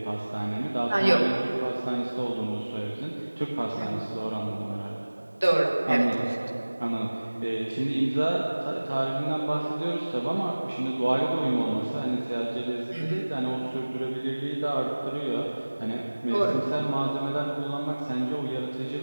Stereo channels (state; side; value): inverted; both; correlation -1.00